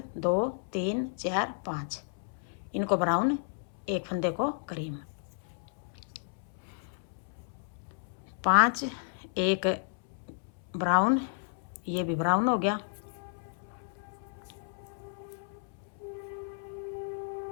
2 3 4 5, इनको ब्राउन, एक फंदे को क्रीम। 5 1 ब्राउन, ये भी ब्राउन हो गया।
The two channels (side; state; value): right; silent; 56 dB below the other